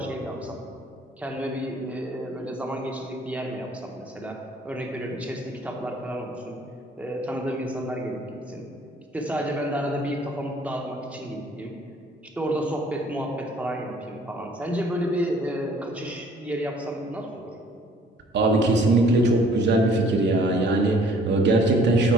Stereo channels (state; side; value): normal; both; correlation 0.57